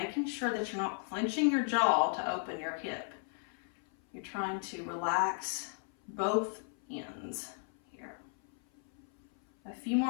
sure that you're not clenching your jaw to open your hip. You're trying to relax both ends here. A few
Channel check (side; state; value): right; silent; 54 dB below the other